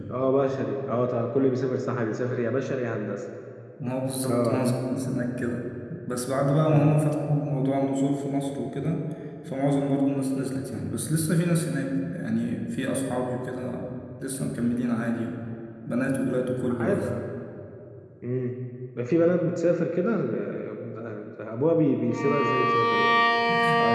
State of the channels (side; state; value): both; identical; correlation 1.00